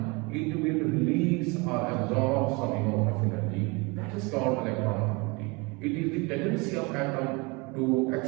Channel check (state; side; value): quieter; left; 27.7 dB